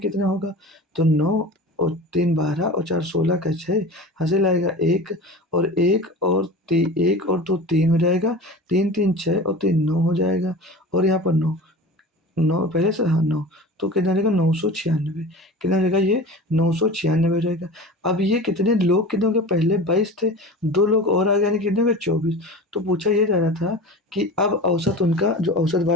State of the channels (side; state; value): both; normal; correlation 0.34